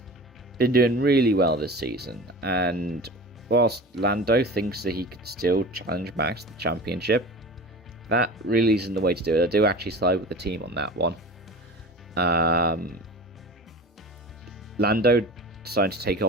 been doing really well this season, and whilst Lando thinks that he could still challenge Max to the championship, that really isn't the way to do it. I do actually side with the team on that one. Lando decided to take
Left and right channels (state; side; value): normal; both; correlation 0.36